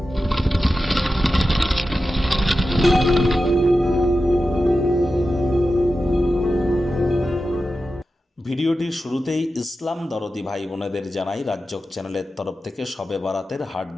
ভিডিওটির শুরুতেই ইসলাম দরদি ভাই বোনেদের জানাই রাজ্যক চ্যানেলের তরফ থেকে শবে বরাতের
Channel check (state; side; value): normal; both; correlation 0.92